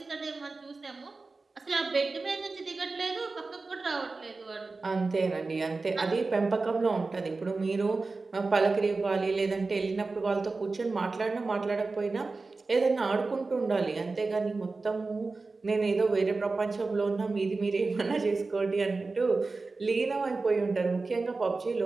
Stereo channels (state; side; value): quieter; left; 3.8 dB